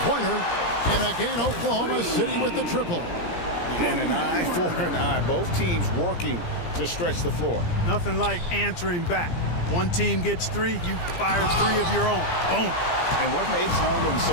And again, Oklahoma City with the triple. And an eye for an eye. Both teams working to stretch the floor. Nothing like answering back. One team gets 3, you fire 3 of your own. Boom. And what makes Holmgren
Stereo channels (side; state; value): right; late; 17 ms